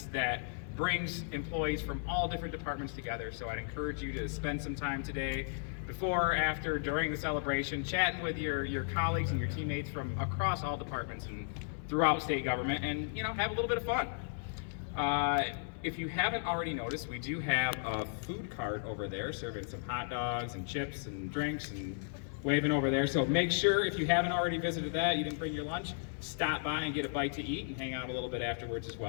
that brings employees from all different departments together, so I'd encourage you to spend some time today, before, after, during the celebration, chatting with your colleagues and your teammates from across all departments and throughout state government, and have a little bit of fun. If you haven't already noticed, we do have a food cart over there serving some hot dogs and chips and drinks and waving over there. So make sure, if you haven't already visited that, you didn't bring your lunch, stop by and get a bite to eat and hang out a little bit afterwards as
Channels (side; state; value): right; silent; 54 dB below the other